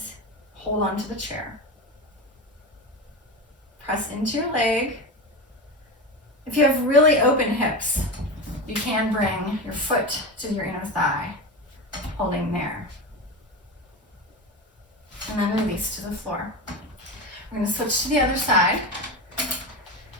hold on to the chair. Press into your leg. If you have really open hips, you can bring your foot to your inner thigh, holding there. And then release to the floor. We're going to switch to the other side.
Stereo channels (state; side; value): normal; both; correlation 0.22